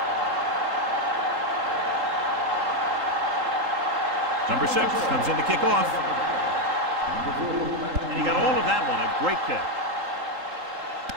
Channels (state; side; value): late; left; 3.8 ms